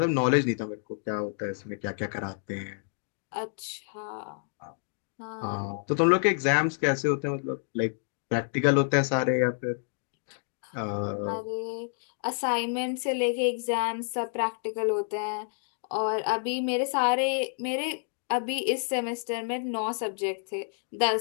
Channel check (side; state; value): right; silent; digital silence